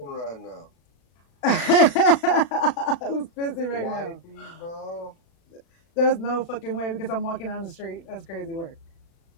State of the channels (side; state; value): right; late; 36 ms